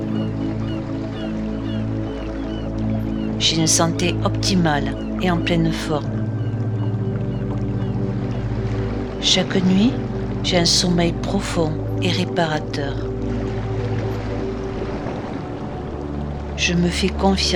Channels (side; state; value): both; identical; correlation 1.00